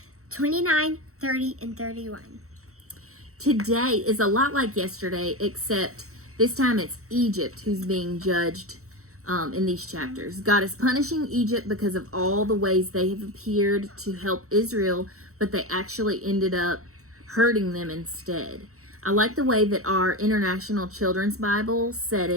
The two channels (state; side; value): late; left; 0.64 ms